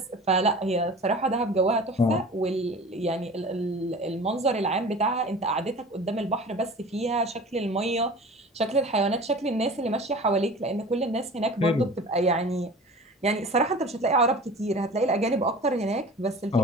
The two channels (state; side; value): normal; both; correlation 0.40